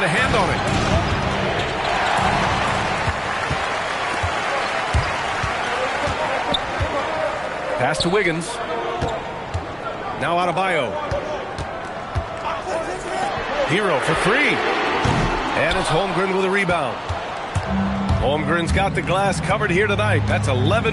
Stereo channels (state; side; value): identical; both; correlation 1.00